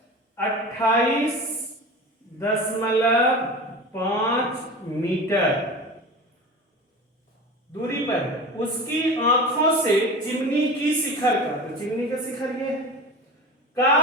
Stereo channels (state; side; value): normal; both; correlation 0.32